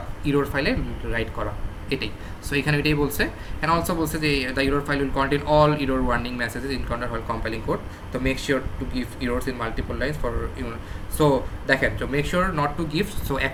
ইরোর ফাইলে রাইট করা, এটাই। সো এখানে এটাই বলছে। অ্যান্ড অলসো বলছে যে the error file will contain all error warning messages encounter while compiling code, তো make sure to give errors in multiple lines for so দেখেন, তো make sure not to give, so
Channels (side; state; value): both; identical; correlation 1.00